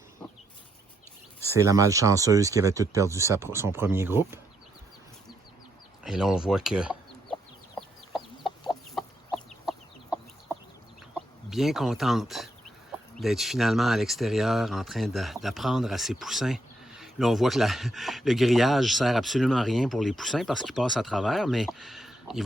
C'est la malchanceuse qui avait tout perdu son premier groupe. Et là, on voit que bien contente d'être finalement à l'extérieur en train d'apprendre à ses poussins. Là, on voit que le grillage sert absolument à rien pour les poussins parce qu'ils passent à travers, mais ils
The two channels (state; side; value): normal; both; correlation 0.78